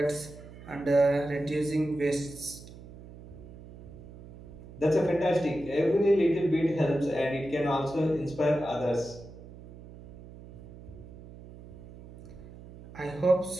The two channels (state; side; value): noise; right; hum, 17 dB below the sound